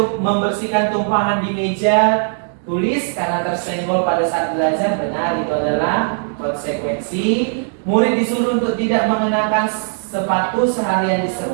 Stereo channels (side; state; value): left; silent; digital silence